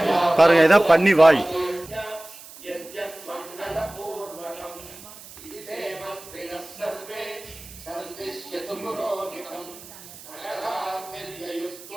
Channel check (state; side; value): noise; right; hiss, 18 dB below the sound